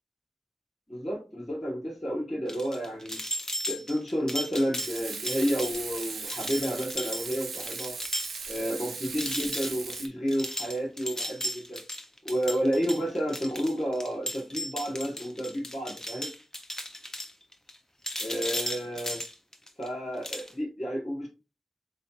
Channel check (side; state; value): both; normal; correlation 0.86